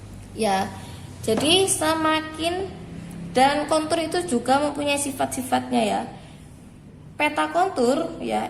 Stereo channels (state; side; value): identical; both; correlation 1.00